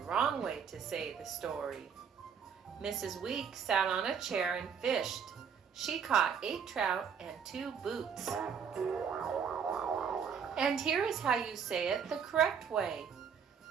way to say the story. Mrs. Week sat on a chair and fished. She caught 8 trout and 2 boots. And here is how you say it the correct way.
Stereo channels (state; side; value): quieter; left; 7.1 dB